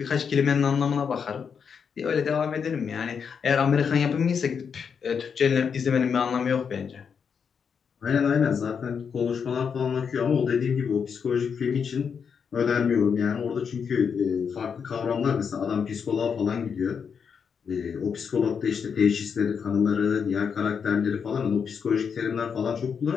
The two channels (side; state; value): right; quieter; 6.6 dB